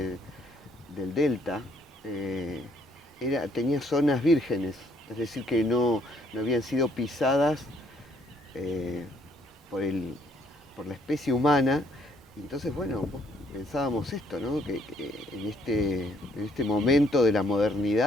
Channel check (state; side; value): normal; both; correlation 0.66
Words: delta, tenía zonas vírgenes, es decir, que no habían sido pisadas eh, por, por la especie humana. Y entonces, bueno, pensábamos esto, ¿no? Que en este momento de la